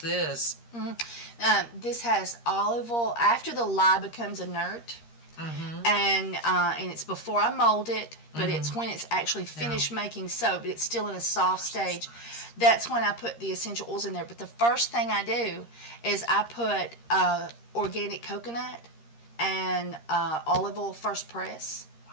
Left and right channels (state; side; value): late; right; 13 ms